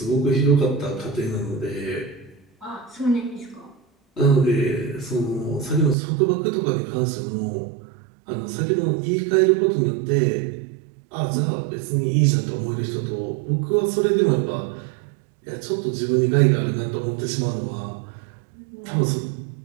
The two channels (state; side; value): drops out; left; at 6.0 s